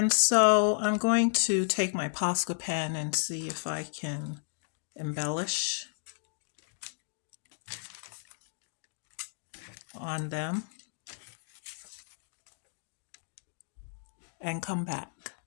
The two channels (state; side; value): silent; right; digital silence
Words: so I'm going to take my Posca pen and see if I can embellish on them and come back.